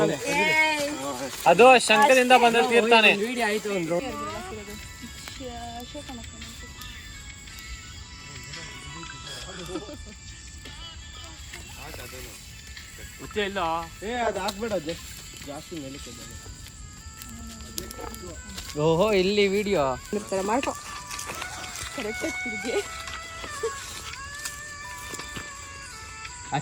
ತಾನೆ. ಅದು ಶಂಕದಿಂದ ಬಂದ ತೀರ್ತಾನೆ. ಇಲ್ಲ ಅದು ಹಾಕ್ಬೇಡ, ಜಾಸ್ತಿ ಮೇಲೆ. ಓಹೋ ಇಲ್ಲಿ ವಿಡಿಯೋ ಮಾಡ್ಕೊ.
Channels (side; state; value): both; identical; correlation 1.00